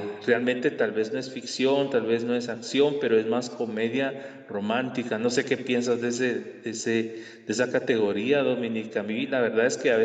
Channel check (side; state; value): both; identical; correlation 1.00